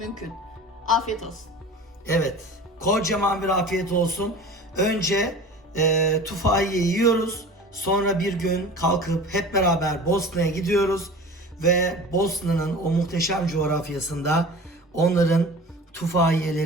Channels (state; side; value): normal; both; correlation 0.39